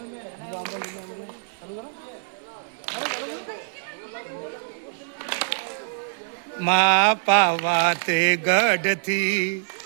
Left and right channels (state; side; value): silent; left; 62 dB below the other